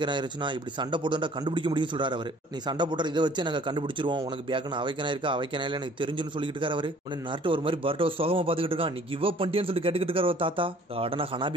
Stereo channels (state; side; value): normal; both; correlation 0.54